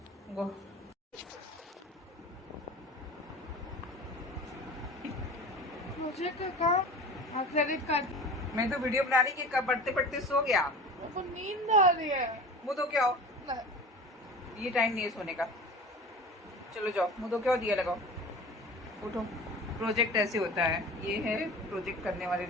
गो। मुझे क्या काम? Credit card. मैं तो वीडियो बना रही कि कब पढ़ते पढ़ते सो गया। मेरे को नींद आ रही है। मुँह तो क्या हो, ये टाइम नहीं है सोने का। चलो जाओ, मुँह तो क्या दिया लगाओ, उठो। प्रोजेक्ट ऐसे होता है, ये है प्रोजेक्ट करने वाले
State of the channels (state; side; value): normal; both; correlation 0.37